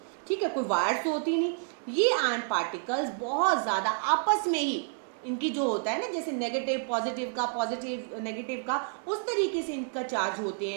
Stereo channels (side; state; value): left; silent; 58 dB below the other